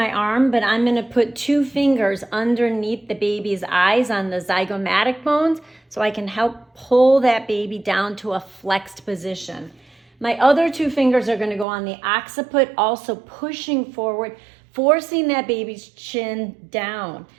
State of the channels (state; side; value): drops out; left; at 11.7 s